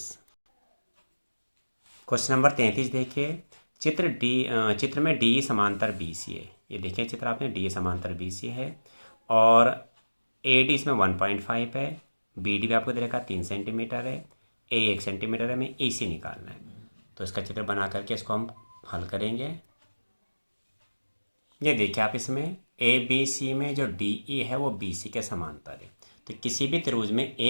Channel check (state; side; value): inverted; both; correlation -1.00